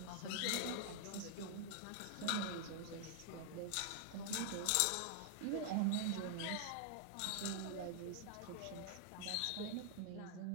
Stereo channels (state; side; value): different; both; correlation 0.00